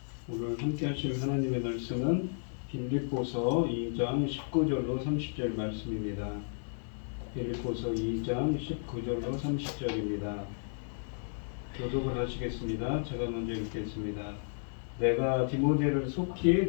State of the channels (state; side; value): silent; right; digital silence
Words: 오늘 함께 하실 하나님의 말씀은 빌립보서 2장 19절로 30절 말씀입니다. 빌립보서 2장 19절로 30절입니다. 교독을 하시겠습니다. 제가 먼저 읽겠습니다. 내가 디모데를 속히